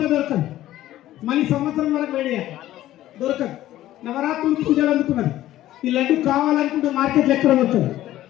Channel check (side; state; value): right; quieter; 14.1 dB